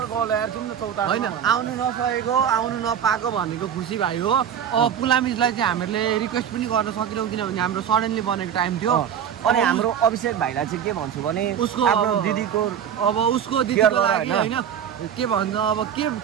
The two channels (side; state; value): left; quieter; 8.8 dB